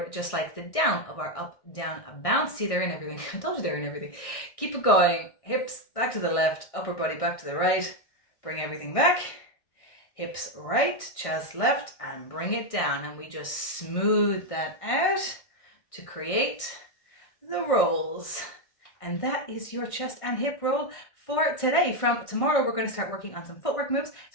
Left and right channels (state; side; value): late; right; 1.6 ms